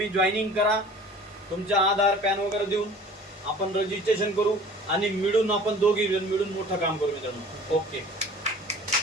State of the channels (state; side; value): normal; both; correlation 0.46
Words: जॉईनिंग करा. तुमच्या आधार पॅन वगैरे देऊन आपण रजिस्ट्रेशन करू आणि मिळून आपण दोघी मिळून मोठं काम करू मित्रांनो. ओके.